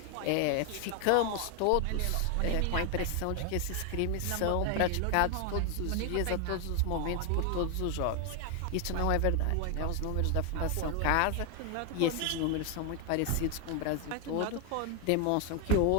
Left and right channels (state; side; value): different; both; correlation 0.00